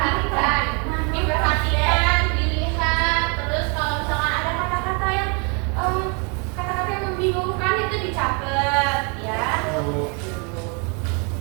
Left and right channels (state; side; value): quieter; left; 34.5 dB